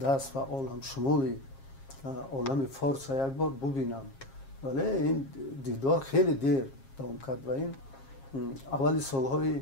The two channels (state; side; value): late; right; 7.4 ms